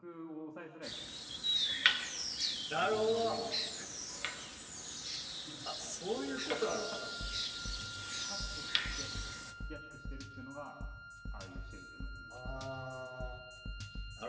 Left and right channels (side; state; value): both; identical; correlation 1.00